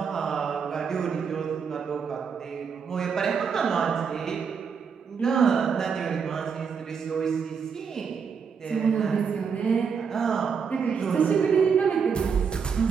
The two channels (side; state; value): left; quieter; 6.2 dB